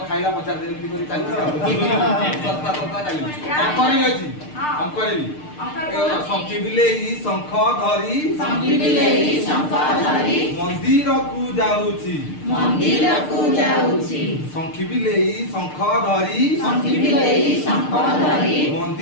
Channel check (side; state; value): right; late; 6.6 ms